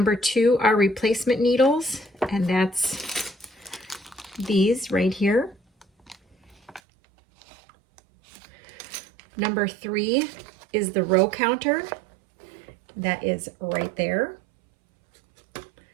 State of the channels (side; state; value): left; drops out; at 6.8 s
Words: 2 are replacement needles, and that's these right here. Number 3 is the row counter. That is right there.